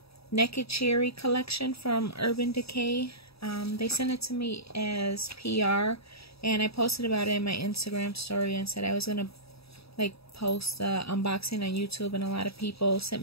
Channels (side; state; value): right; late; 0.77 ms